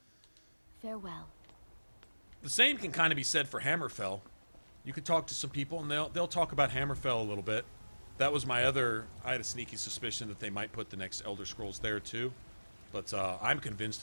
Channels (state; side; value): inverted; both; correlation -1.00